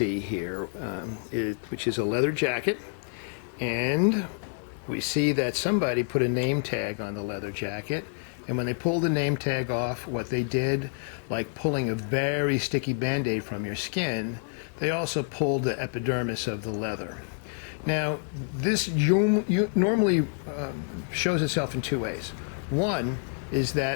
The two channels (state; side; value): silent; right; 59 dB below the other